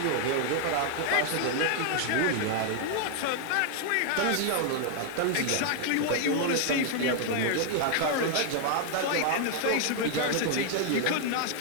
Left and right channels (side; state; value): both; different; correlation 0.00